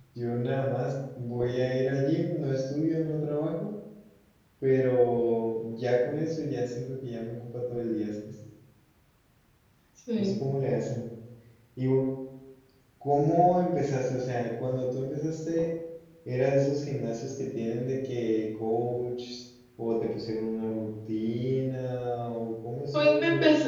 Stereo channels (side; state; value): both; identical; correlation 1.00